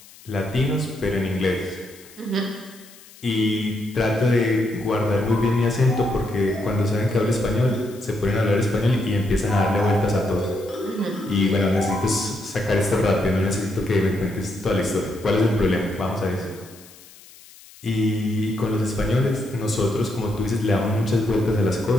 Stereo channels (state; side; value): noise; left; hiss, 22 dB below the sound